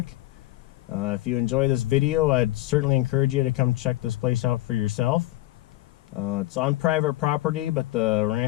If you enjoy this video, I'd certainly encourage you to come check this place out for yourself. It's on private property, but the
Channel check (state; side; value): quieter; right; 17.0 dB